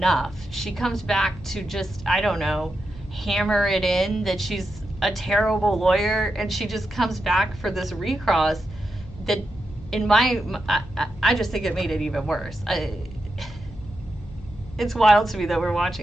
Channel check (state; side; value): noise; left; hum, 17 dB below the sound